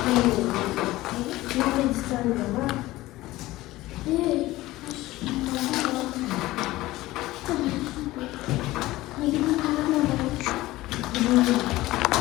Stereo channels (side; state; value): right; quieter; 17.7 dB